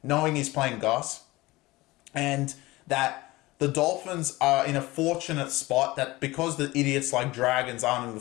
knowing he's playing Gus, and that the Dolphins are in a fortunate spot that because the idiots like Dragons aren't in the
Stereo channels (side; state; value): right; quieter; 20.1 dB